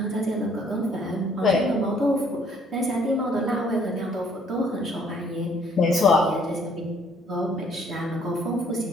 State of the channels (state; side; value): normal; both; correlation 0.62